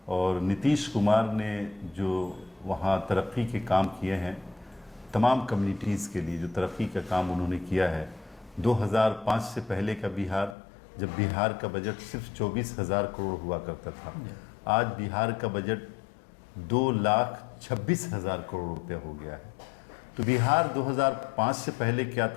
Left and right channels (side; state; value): right; drops out; at 10.6 s